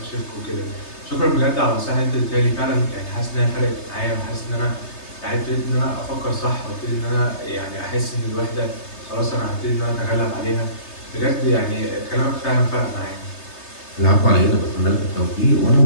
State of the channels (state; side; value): late; right; 3.3 ms